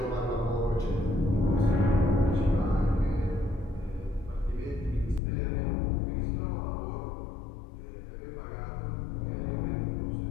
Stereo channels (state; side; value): drops out; right; at 5.2 s